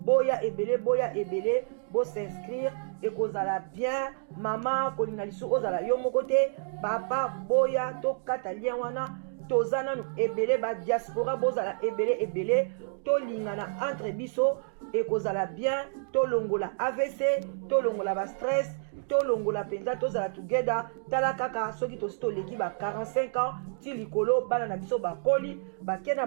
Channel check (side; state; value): left; silent; digital silence